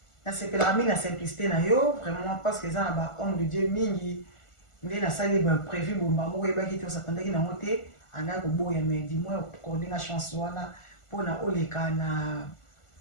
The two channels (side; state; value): right; late; 1.4 ms